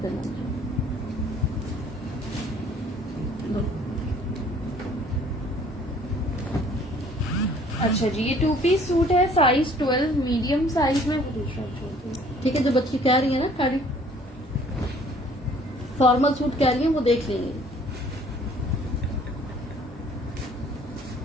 करना मुझे। अच्छा जी, ये 2 पीस सूट है। साइज 12 मीडियम साइज में। ठीक है, जो बच्ची कह रही है ना खाड़ी फॉर्मल सूट कह रही है, वो देख लेंगे।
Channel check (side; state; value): both; normal; correlation 0.56